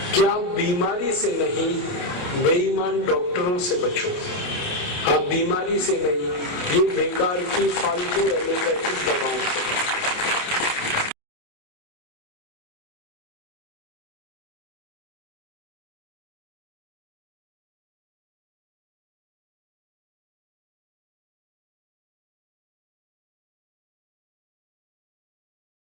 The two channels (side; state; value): right; late; 28 ms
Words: कि आप बीमारी से नहीं, बेईमान डॉक्टरों से बचो। आप बीमारी से नहीं, ये बेकार की फालतू एलोपैथिक दवाओं से